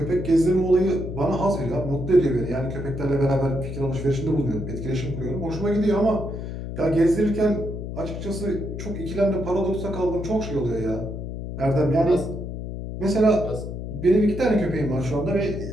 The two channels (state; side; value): noise; left; hum, 7 dB below the sound